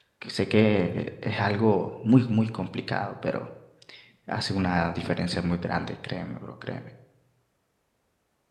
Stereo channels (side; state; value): both; identical; correlation 1.00